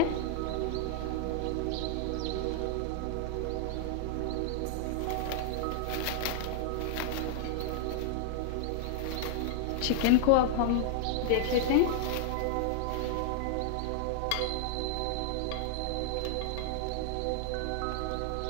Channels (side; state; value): both; different; correlation -0.01